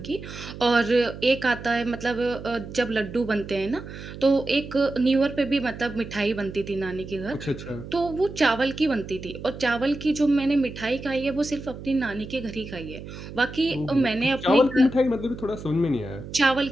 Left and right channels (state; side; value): noise; right; hum, 12 dB below the sound